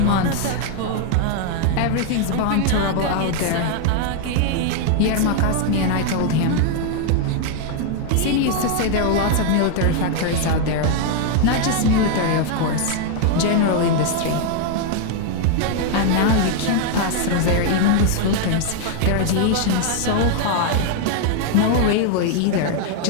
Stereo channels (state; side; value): different; both; correlation 0.00